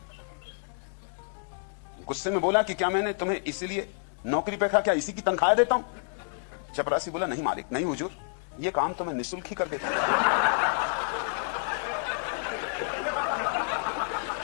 गुस्से में बोला कि क्या मैंने तुम्हें इसीलिए नौकरी पे रखा, क्या इसी की तनख्वाह देता हूं? चपरासी बोला, नहीं मालिक, नहीं हुजूर, ये काम तो मैं निःशुल्क ही कर देता हूं।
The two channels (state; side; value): silent; right; digital silence